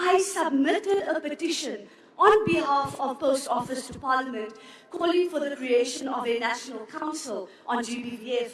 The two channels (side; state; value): both; identical; correlation 1.00